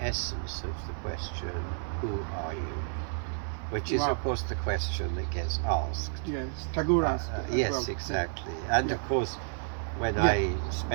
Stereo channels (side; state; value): left; silent; 57 dB below the other